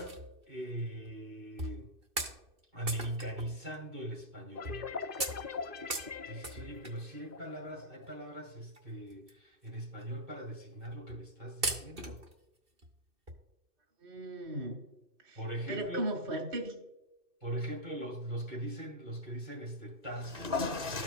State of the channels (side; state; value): left; late; 2.6 ms